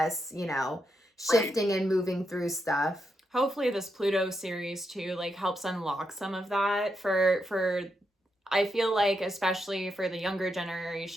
you know, shifting and moving through stuff. Hopefully this Pluto series too like helps unlock some of that for I feel like, especially for the younger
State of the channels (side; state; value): both; normal; correlation 0.83